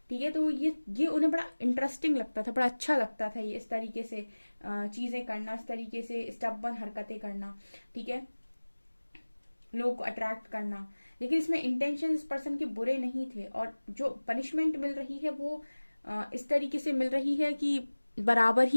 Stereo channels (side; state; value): both; inverted; correlation -1.00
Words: ठीक है, तो ये उन्हें बड़ा इंटरेस्टिंग लगता था, बड़ा अच्छा लगता था ये इस तरीके से चीजें करना, इस तरीके से स्टबर्न हरकतें करना। ठीक है, लोग को अट्रैक्ट करना। लेकिन इसमें इंटेंशन इस पर्सन के बुरे नहीं थे, और जो पनिशमेंट मिल रही है वो इस तरीके से मिल रही है कि बराबर